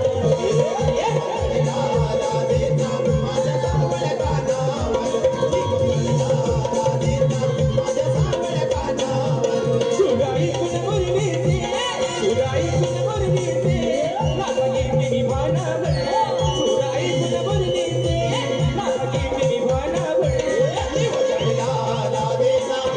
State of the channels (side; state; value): both; identical; correlation 1.00